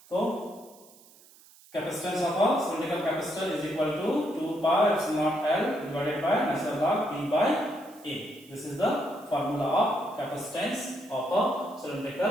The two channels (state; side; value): noise; right; hiss, 25 dB below the sound